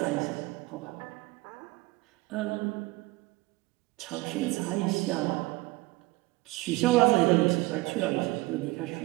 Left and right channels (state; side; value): quieter; left; 21.8 dB